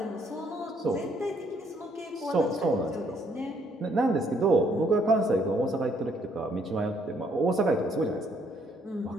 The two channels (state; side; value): normal; both; correlation 0.68